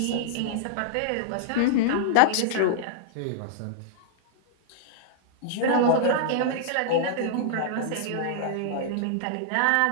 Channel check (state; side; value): different; both; correlation -0.01